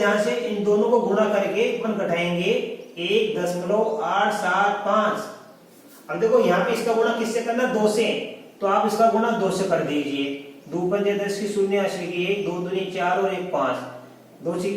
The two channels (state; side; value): identical; both; correlation 1.00